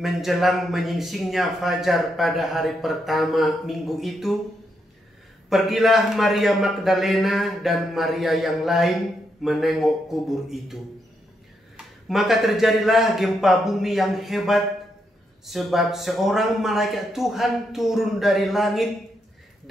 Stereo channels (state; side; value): normal; both; correlation 0.80